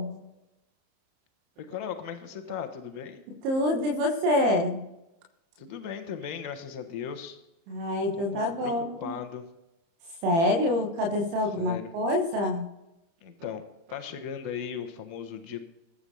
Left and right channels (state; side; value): late; left; 30 ms